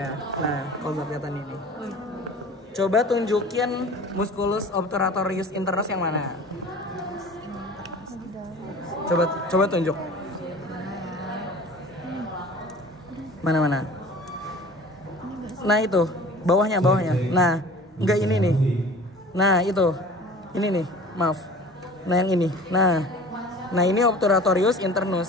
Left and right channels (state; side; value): normal; both; correlation 0.42